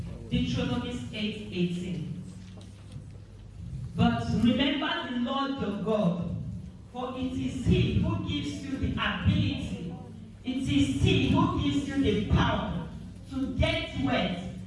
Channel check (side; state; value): both; identical; correlation 1.00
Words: Deuteronomy 8:18. But remember the Lord your God, for it is He who gives you the ability, it is He who gives you the power to get wealth,